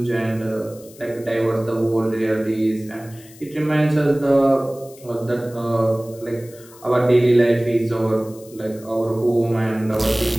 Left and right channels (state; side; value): noise; left; hiss, 22 dB below the sound